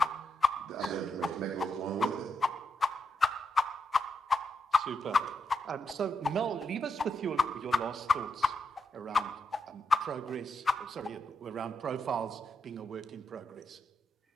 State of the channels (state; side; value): normal; both; correlation 0.82